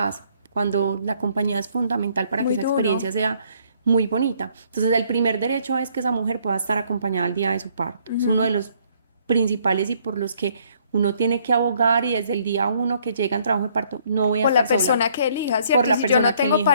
cuando la compañía es fundamental para que muy esa duro. experiencia sea muy bonita. Entonces el primer derecho es que esa mujer pueda estar acompañada al día de su parto. Es uno de Ujú. los principales y por los que uno tiene que abogar y desde el día uno que llega en trabajo de parto, no voy a Por la estar sola, persona que elija, por ¿cierto? Y la si yo persona no que tengo elija,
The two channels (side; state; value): both; inverted; correlation -0.65